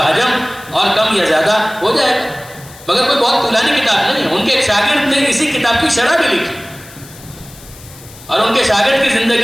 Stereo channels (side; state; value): left; noise; hiss, 20 dB below the sound